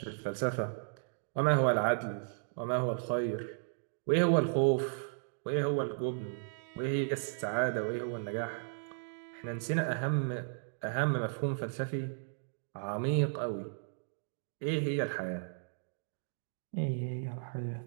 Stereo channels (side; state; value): left; silent; digital silence